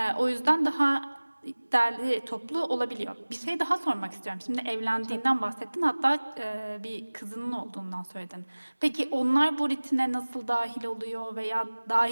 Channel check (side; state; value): both; inverted; correlation -1.00